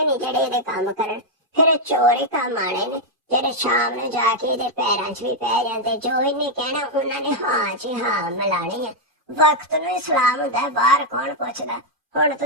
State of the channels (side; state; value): left; late; 2.4 ms